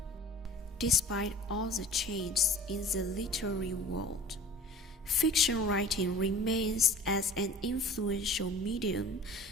Despite all the changes in the literary world, fiction writing remains as an influential medium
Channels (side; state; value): both; normal; correlation 0.43